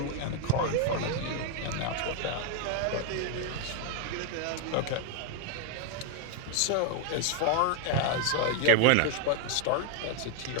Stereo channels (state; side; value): different; both; correlation 0.01